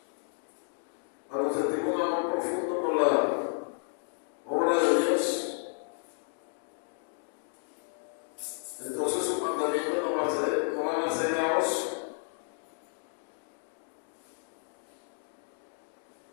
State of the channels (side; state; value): right; silent; digital silence